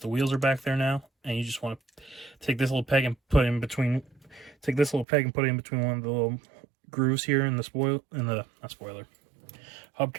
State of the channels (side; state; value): left; drops out; at 5.1 s